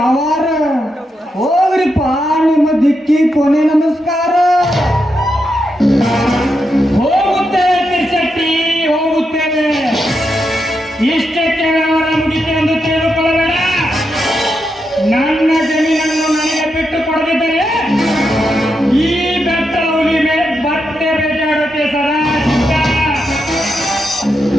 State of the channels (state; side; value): normal; both; correlation 0.84